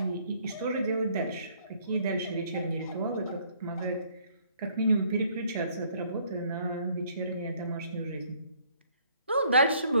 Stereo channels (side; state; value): both; inverted; correlation -0.63